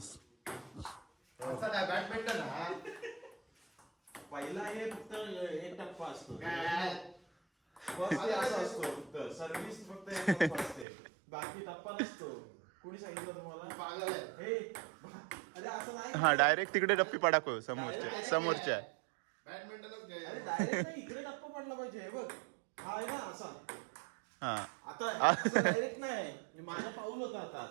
बॅडमिंटन पहिला हे फक्त एक टप्पा असतो. सर्व्हिस फक्त एक टप्पा असते, बाकी टप्पा नसतो. कोणी सांगितलं तुम्हाला? अरे असं नाही. हा डायरेक्ट तिकडे डप्पी पडाको समोरच्या. बॅडमिंटनच अरे डायरेक्ट नाही, इकडे टप्पा पडला पाहिजे. हे बघ हा आहे ना असा. हा आता डायरेक्ट नाही, माझा पाऊल होता आता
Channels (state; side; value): drops out; left; at 10.9 s